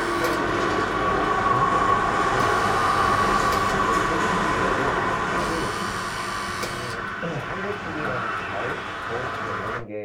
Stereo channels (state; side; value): identical; both; correlation 1.00